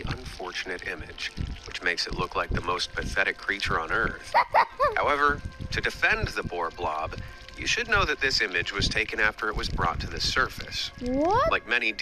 unfortunate image, which makes it look like the most pathetic creature on Earth. However, to defend the poor blob, you should know that this image was taken after it was brought to the surface. What? Like many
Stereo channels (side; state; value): both; identical; correlation 1.00